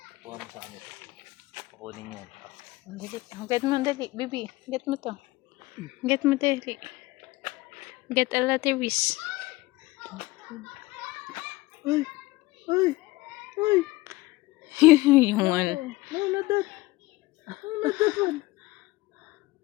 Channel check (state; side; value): quieter; right; 19.7 dB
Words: Kuha sa kanya. Kukunin yan. Get mo, dali. Baby, get mo to. Get mo, dali. Get a lateris. Ay. Yung ano. No, not that one.